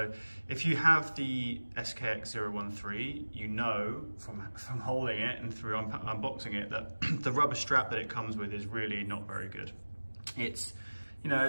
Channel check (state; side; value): inverted; both; correlation -1.00